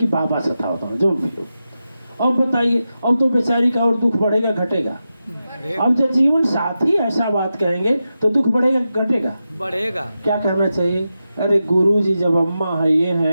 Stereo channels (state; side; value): inverted; both; correlation -0.91